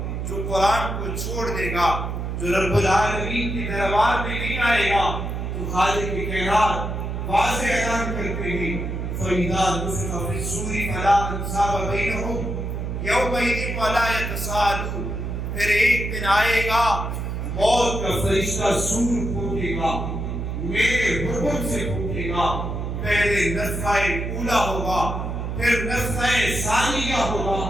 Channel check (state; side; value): noise; right; hum, 3 dB below the sound